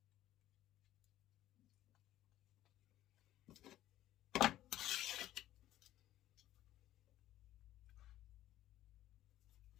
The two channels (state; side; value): quieter; right; 13.8 dB